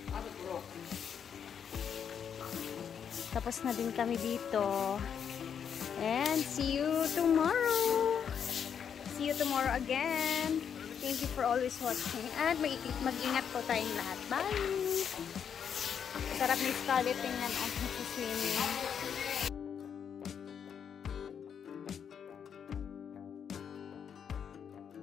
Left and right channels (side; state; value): right; quieter; 7.7 dB